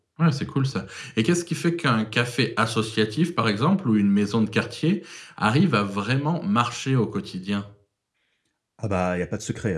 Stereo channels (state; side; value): identical; both; correlation 1.00